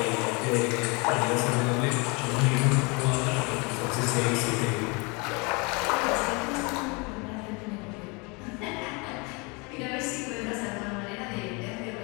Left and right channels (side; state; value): right; quieter; 29.4 dB